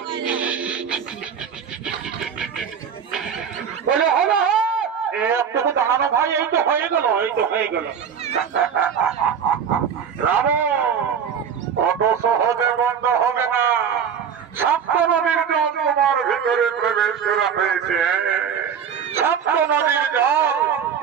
বলে হবে একটু দাঁড়ানো ভাই, এই তো হয়ে গেল। রাবণ কত সহজ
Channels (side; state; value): left; quieter; 7.5 dB